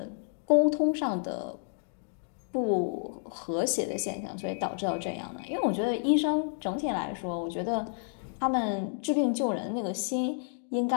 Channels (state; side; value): silent; right; digital silence